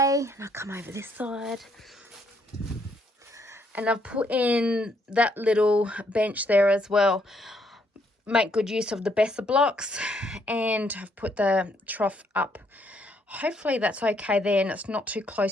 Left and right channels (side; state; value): both; normal; correlation 0.71